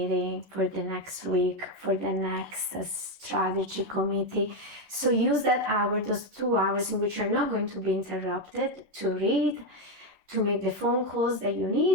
for the next week, for the next strategy committee. So use that hour, those 2 hours in which you're not going to be interrupted, to read, to make the phone calls that you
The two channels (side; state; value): left; late; 11 ms